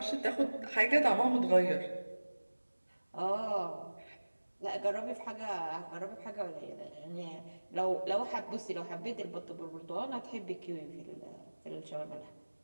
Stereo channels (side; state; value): both; inverted; correlation -1.00